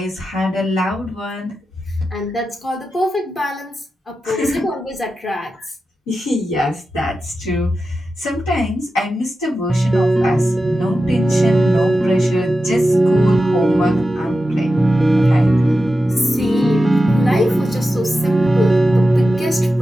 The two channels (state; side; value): normal; both; correlation 0.92